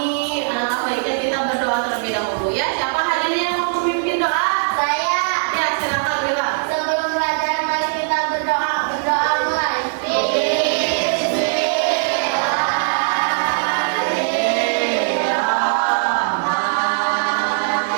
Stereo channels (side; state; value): left; silent; digital silence